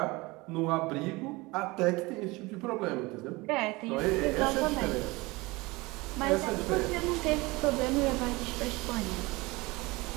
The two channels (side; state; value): left; quieter; 22.9 dB